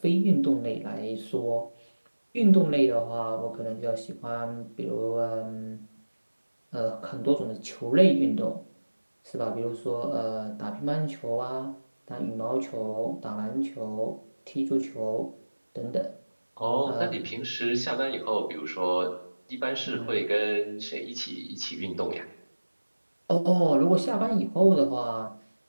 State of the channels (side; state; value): both; inverted; correlation -1.00